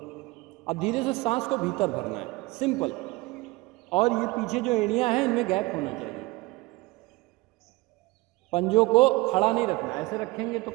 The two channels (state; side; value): quieter; left; 22.3 dB